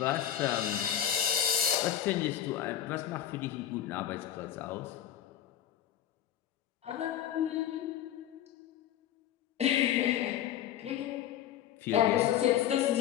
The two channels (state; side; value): quieter; right; 11.0 dB